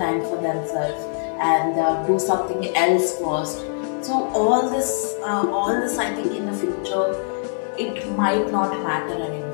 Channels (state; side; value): silent; right; digital silence